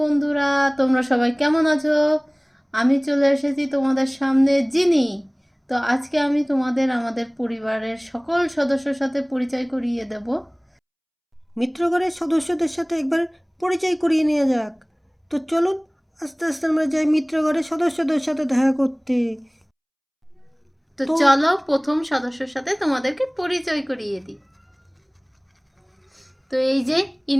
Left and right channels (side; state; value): both; identical; correlation 1.00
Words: তোমরা সবাই কেমন আছো? আমি চলে এসেছি তোমাদের সামনে জিনি। তো আজকে আমি তোমাদের আমাদের পরিবারের সকল সদস্যর সাথে পরিচয় করিয়ে দেব। মিত্রগণের সদস্যদের সাথে একবার পরিচয় করিয়ে নেওয়া যাক। তো চলুন আস্তে আস্তে আমরা যাই মিত্রগণের সদস্যদের সাথে দেখা করতে। তো তো চলো প্রথম সদস্যর সাথে তোমাদেরকে পরিচয় করিয়ে দিই। তো এই যে